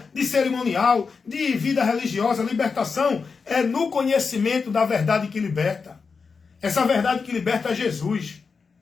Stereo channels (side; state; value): right; quieter; 5.1 dB